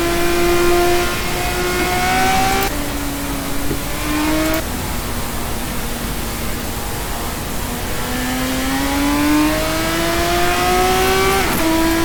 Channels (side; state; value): both; identical; correlation 1.00